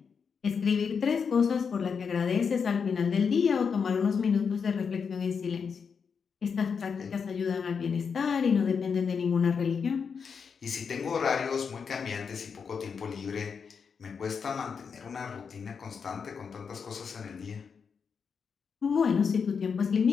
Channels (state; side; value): quieter; right; 6.1 dB